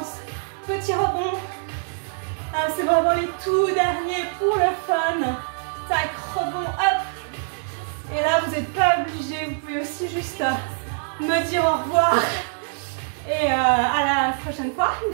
petits rebonds. Ah, c'est vraiment les tout derniers pour le fun. Tac, rebond, hop. Et là, vous n'êtes pas obligé, vous pouvez aussi juste me dire au revoir. Et à la prochaine fois.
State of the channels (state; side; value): silent; left; digital silence